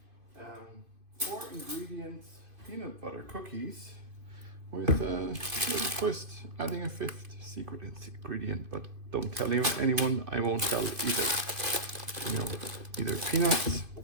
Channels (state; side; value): late; left; 2.5 ms